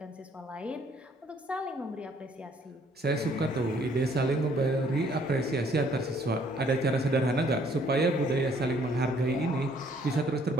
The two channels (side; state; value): both; normal; correlation 0.63